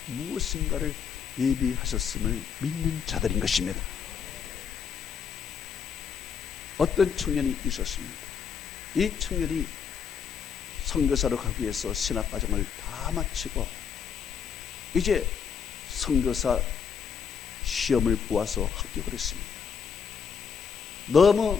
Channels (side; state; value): right; quieter; 6.9 dB